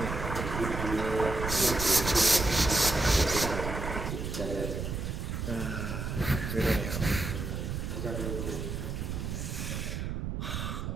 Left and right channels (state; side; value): noise; right; rumble, 4 dB below the sound